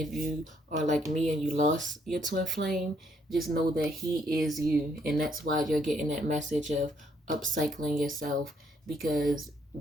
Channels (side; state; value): both; normal; correlation 0.70